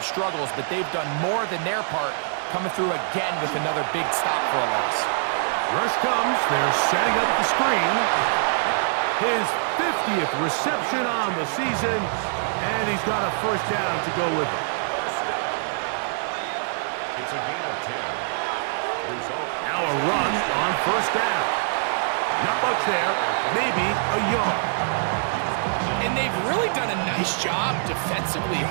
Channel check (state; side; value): silent; left; 62 dB below the other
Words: struggles, but they've done more than their part, coming through again with another big stop for a loss. Rush comes. They're setting up the screen. His 50th reception on the season, and he's got a 1st down to go with him. It's a gain of 10. Result. Now a run on 1st down. Not much there, maybe a yard. And they've really done a nice job defensively